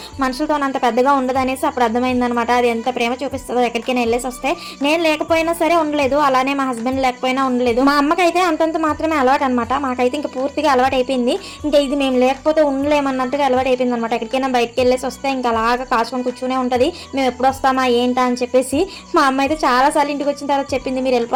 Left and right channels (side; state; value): both; identical; correlation 1.00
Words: మనుషులతో అంత పెద్దగా ఉండదు అనేసి అప్పుడు అర్థమైంది అనమాట. అది ఎంత ప్రేమ చూపిస్తుందో. ఎక్కడికైనా వెళ్ళేసి వస్తే నేను లేకపోయినా సరే ఉండలేదు, అలానే మా హస్బెండ్ లేకపోయినా ఉండలేదు. మా అమ్మకైతే అంతంత మాత్రమే అలవాటు అనమాట. మాకైతే ఇంకా పూర్తిగా అలవాటు అయిపోయింది. ఇంకా ఇది మేము లేకపోతే ఉండలేమన్నట్టుగా అలవాటు అయిపోయింది అనమాట. ఎక్కడికైనా బయటకు వెళ్ళేసి వస్తే ఇంకా అలాగా కాచుకొని కూర్చునే ఉంటుంది. మేము ఎప్పుడు వస్తామా ఏంటా అని చెప్పేసి మా అమ్మ అయితే చాలా సార్లు ఇంటికి వచ్చిన తర్వాత చెప్పింది, మీరు